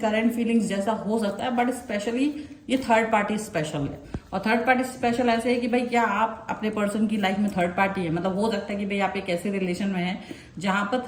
फीलिंग्स जैसा हो सकता है, बट स्पेशली ये थर्ड पार्टी स्पेशल है। और थर्ड पार्टी स्पेशल ऐसे है कि भाई क्या आप अपने पर्सन की लाइफ में थर्ड पार्टी है, मतलब हो सकता है कि भाई आप एक ऐसे रिलेशन में हैं जहां पर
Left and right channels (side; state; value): both; identical; correlation 1.00